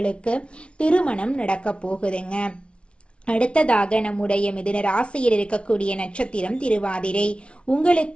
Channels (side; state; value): right; late; 0.059 ms